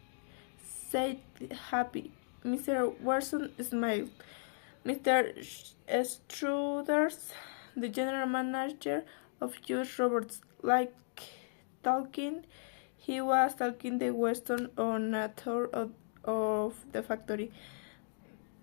said happy. Mr. Watson smiled. Mr. Struders, the general manager of US Robots, like talking. He was talking to Weston on a tour of the factory.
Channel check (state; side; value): silent; right; digital silence